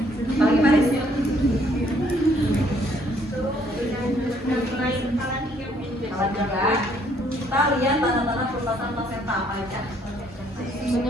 Pagi Paris. Alat juga. Kita lihat tanda-tanda perubahan plasenta apa aja.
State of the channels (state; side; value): normal; both; correlation 0.65